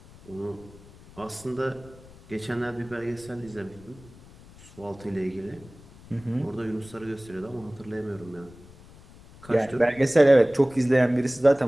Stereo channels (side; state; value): left; noise; rumble, 22 dB below the sound